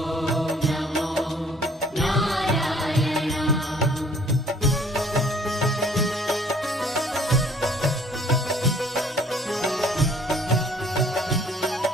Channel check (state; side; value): normal; both; correlation 0.57